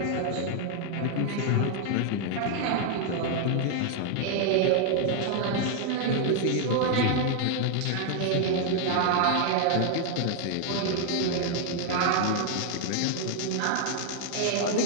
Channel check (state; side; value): different; both; correlation 0.00